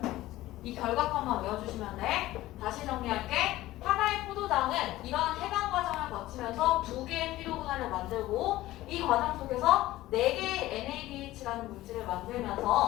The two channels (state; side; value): quieter; right; 16.3 dB